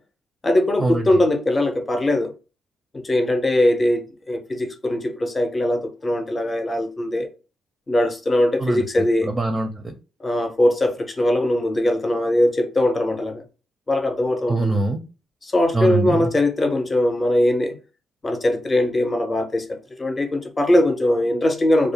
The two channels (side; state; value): both; normal; correlation 0.92